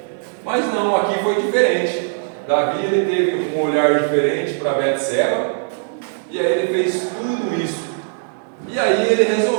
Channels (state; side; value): silent; left; digital silence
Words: Mas não, aqui foi diferente. Davi ele teve um olhar diferente para Betseba, e aí ele fez tudo isso. E aí ele